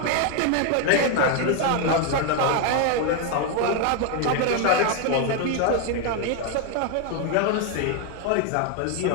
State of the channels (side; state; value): both; different; correlation 0.01